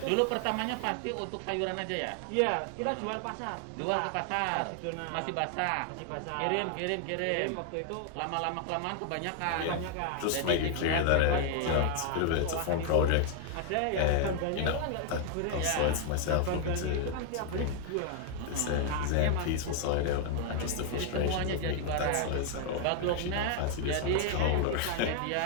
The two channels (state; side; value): different; both; correlation 0.00